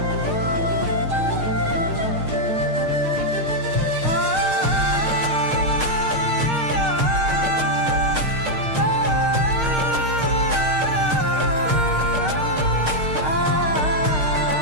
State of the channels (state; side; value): late; left; 6.5 ms